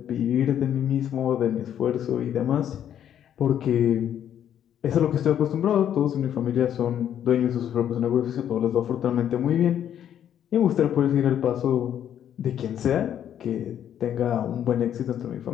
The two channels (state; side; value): quieter; right; 10.0 dB